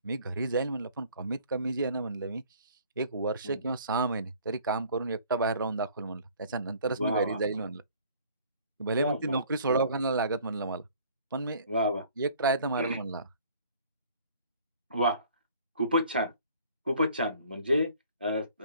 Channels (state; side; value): inverted; both; correlation -0.54